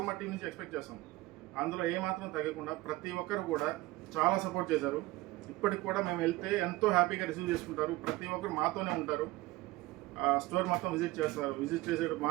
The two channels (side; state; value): left; quieter; 19.3 dB